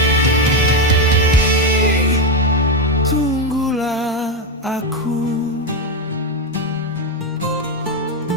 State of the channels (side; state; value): both; normal; correlation 0.09